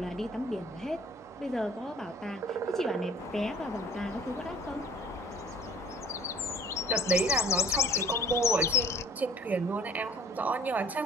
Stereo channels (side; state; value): both; normal; correlation 0.51